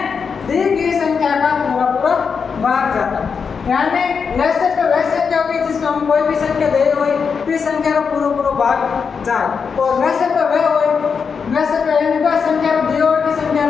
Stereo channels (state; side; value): quieter; right; 5.9 dB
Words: दी गई संख्या का पूरा भाग जाता है। यानी लेसर पे वैसे क्या होगी जिसमें हम कोई भी संख्या दे हुई फिर संख्या का पूरा भाग जाए, और लेसर पे वह हुई वैसे पे इनका संख्या दी हुई की संख्या